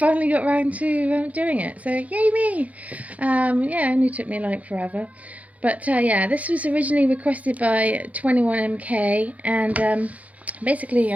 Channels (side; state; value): left; late; 0.070 ms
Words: got around to doing it. So yay me! Yeah, it only took me like forever. But yeah, this was originally requested by 21MK, and basically